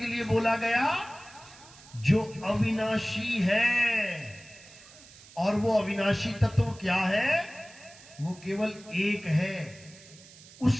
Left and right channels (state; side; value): noise; right; hiss, 21 dB below the sound